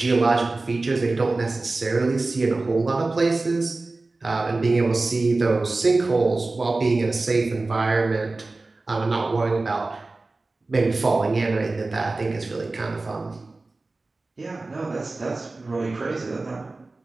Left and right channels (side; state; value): left; quieter; 3.3 dB